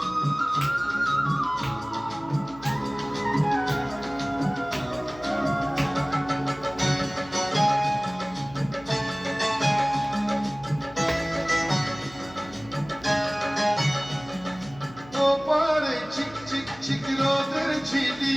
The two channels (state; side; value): noise; left; hum, 20 dB below the sound